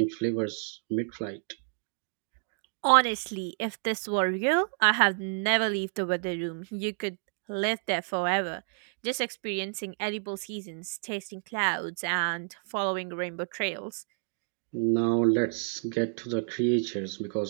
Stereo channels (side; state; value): left; silent; digital silence